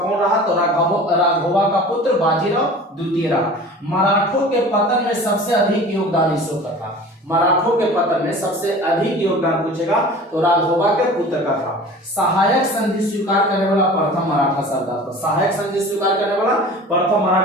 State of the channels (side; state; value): both; normal; correlation 0.41